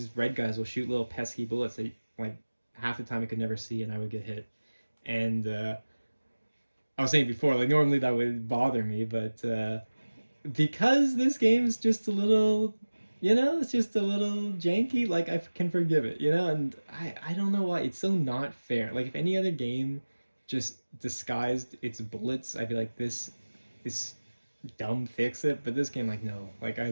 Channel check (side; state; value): both; inverted; correlation -1.00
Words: red guys will shoot little pesky bullets that like half the time I could never see, and I would get hit. And I was saying before, like normally that would bother me, but because this game is just a little, you know, it's just a little janky, like I can forgive it, you know. And I don't know why it's so not fair. Like if any other game just disguised its bullets, I'd be like, this is dumb, fix it. But this game, like, no, like I